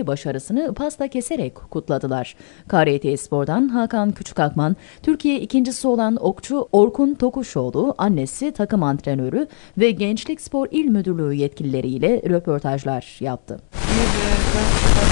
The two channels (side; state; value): right; silent; 66 dB below the other